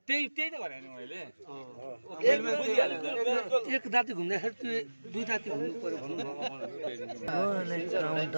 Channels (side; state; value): both; inverted; correlation -1.00